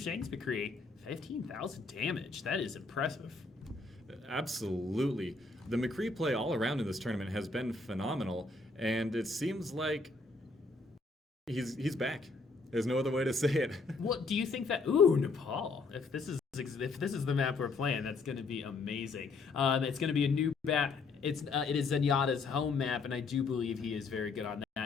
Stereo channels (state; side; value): quieter; right; 3.9 dB